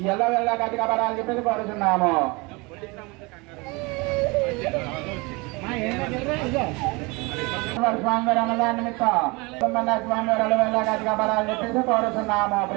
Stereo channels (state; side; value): quieter; left; 26.4 dB